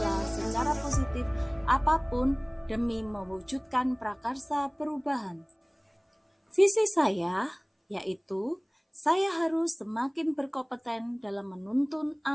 secara positif apapun demi mewujudkan prakarsa perubahan. Visi saya yaitu saya harus semakin berkompeten dalam menuntun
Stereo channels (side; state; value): both; identical; correlation 1.00